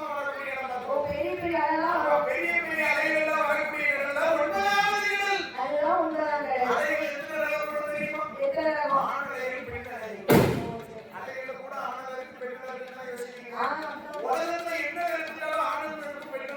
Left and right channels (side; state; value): both; identical; correlation 1.00